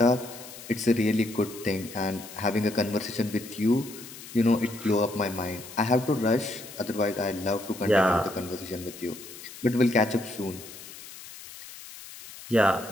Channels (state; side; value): noise; left; hiss, 15 dB below the sound